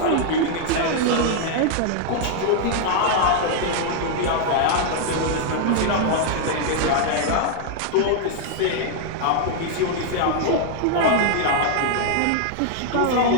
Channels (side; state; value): both; different; correlation 0.00